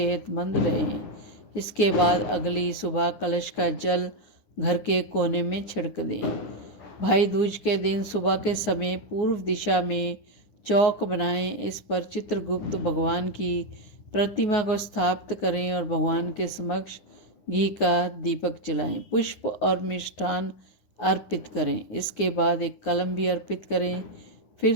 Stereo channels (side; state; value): right; late; 10 ms